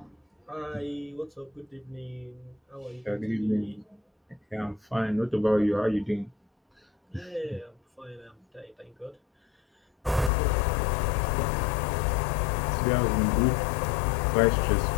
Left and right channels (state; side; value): drops out; right; at 10.3 s